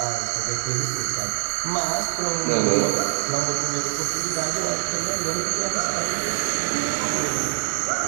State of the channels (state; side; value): silent; left; 62 dB below the other